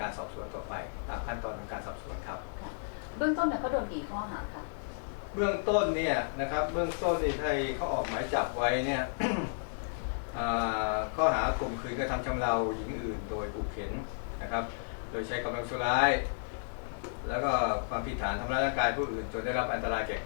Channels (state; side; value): silent; right; digital silence